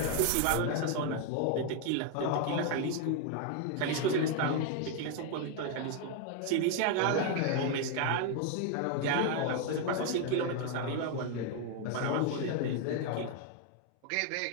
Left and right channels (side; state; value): both; different; correlation 0.01